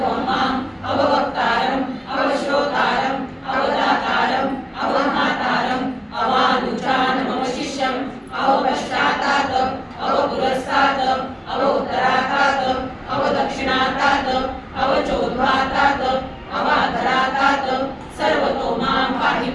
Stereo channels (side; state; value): both; identical; correlation 1.00